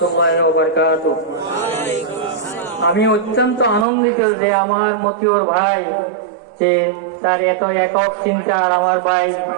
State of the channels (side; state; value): left; drops out; at 3.9 s